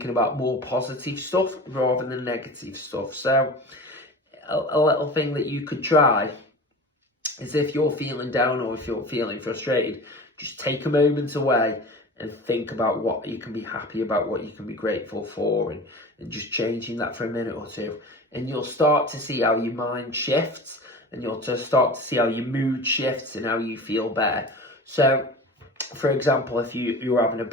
about more positive stuff rather than negative stuff. So a little thing that you could try is, if you're feeling down or if you're feeling frustrated, just take a moment away and think about what you can be happy about, what you can be grateful for, and just changing that for a minute or two. And you'll start to see how your mind shifts, and you'll just start to see how your mood shifts and how you feel better. So For example, if you're having a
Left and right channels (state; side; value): normal; both; correlation 0.35